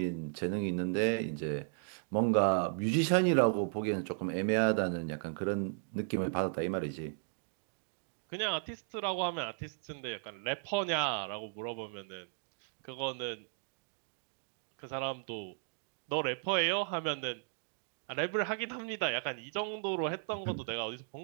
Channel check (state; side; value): silent; left; digital silence